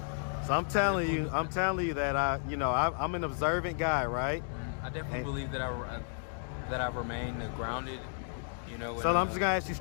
I'm telling you that I'm an observant guy, right? I definitely believe that I remain grounded, you know. So I'm just gonna ask you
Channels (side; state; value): right; silent; digital silence